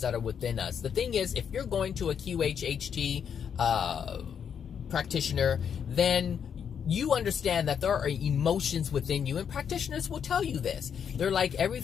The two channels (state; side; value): quieter; right; 7.7 dB